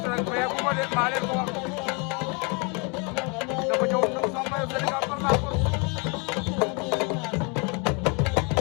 rek mais bu ma leen maa leen ko wax dafa ñëw ñëw sama maillot Sénégal par la force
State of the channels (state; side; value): quieter; right; 31.6 dB